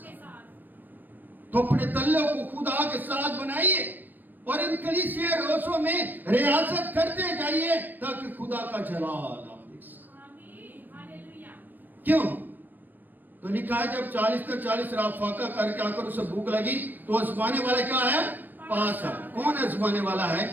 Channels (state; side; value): late; left; 0.086 ms